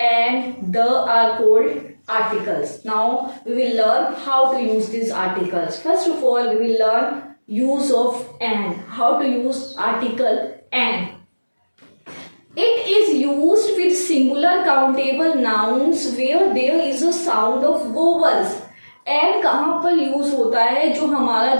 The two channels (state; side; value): inverted; both; correlation -1.00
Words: and the are called articles. Now we will learn how to use these articles. First of all, we will learn use of and, how to use article and. It is used with singular countable nouns where there is a sound of vowels. and कहाँ पर यूज होता है? जो हमारा